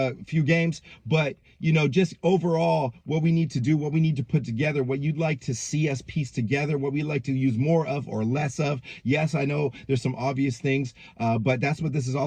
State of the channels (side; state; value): both; identical; correlation 1.00